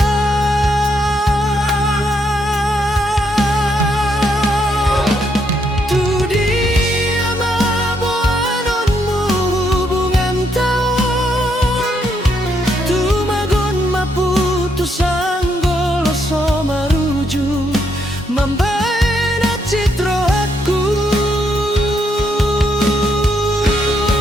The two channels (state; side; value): normal; both; correlation 0.76